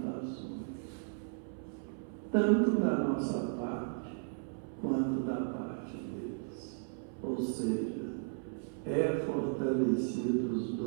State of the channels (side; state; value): left; silent; 54 dB below the other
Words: tanto da nossa parte quanto da parte deles. Ou seja, é fortalecido os